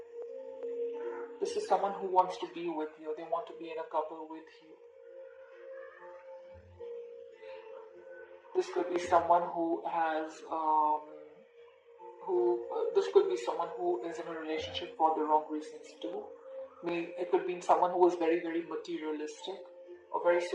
This is someone who wants to be with you. They want to be in a couple with you. This could be someone who has, this could be someone who is in a relationship for the wrong reasons too. It could be someone who is very, very materialistic or very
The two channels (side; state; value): both; identical; correlation 1.00